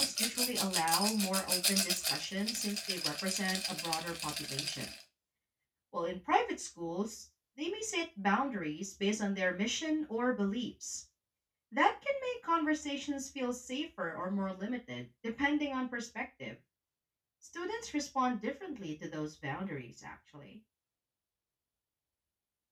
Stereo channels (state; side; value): identical; both; correlation 1.00